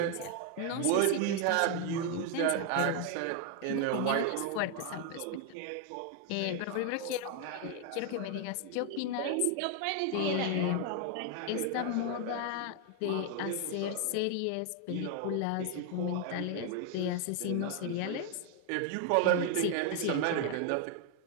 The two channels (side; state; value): both; different; correlation 0.01